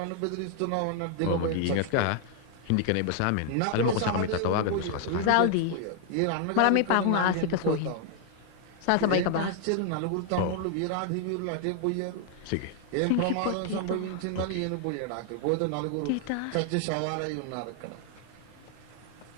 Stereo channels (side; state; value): both; different; correlation 0.00